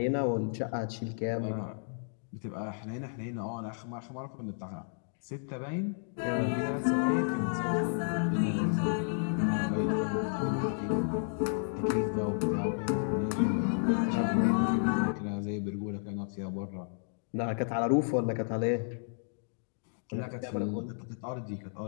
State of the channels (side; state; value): right; silent; digital silence